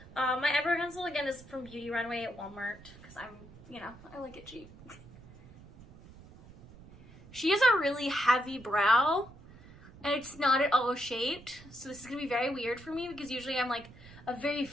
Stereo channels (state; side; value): noise; right; rumble, 20 dB below the sound